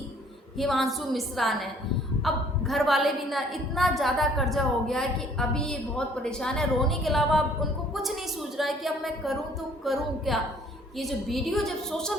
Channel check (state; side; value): normal; both; correlation 0.58